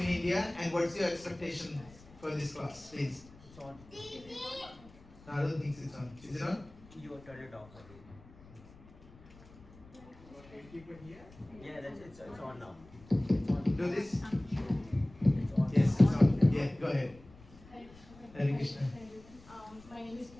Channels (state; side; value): noise; left; rumble, 22 dB below the sound